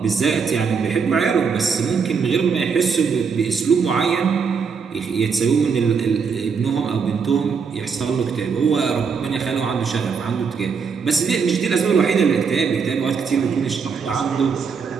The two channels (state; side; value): quieter; left; 5.8 dB